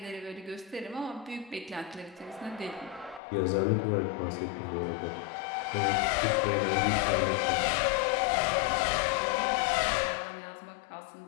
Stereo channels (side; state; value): right; drops out; at 3.2 s